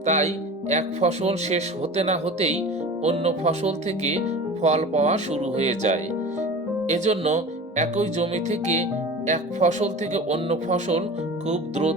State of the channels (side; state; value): both; normal; correlation 0.36